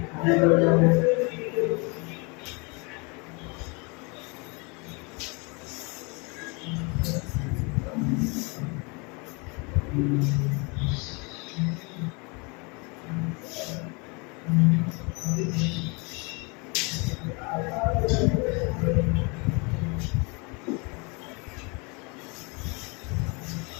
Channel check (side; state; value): right; quieter; 30.4 dB